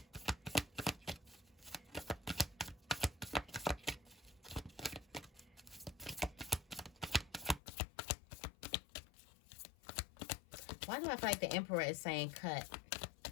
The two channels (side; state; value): right; drops out; at 7.6 s